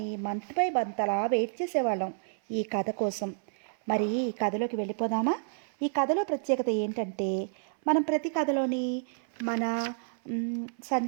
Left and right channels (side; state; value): left; silent; 58 dB below the other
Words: మంత్ బై మంత్ అలా వెయిట్ చేసేవాళ్ళం ఈ కథ కోసం. మరి ఈ కథలోకి వెళ్ళిపోదామా? ఈ కథలో ప్రత్యేకత ఏంటంటే, మనం ప్రతి కథలోని మన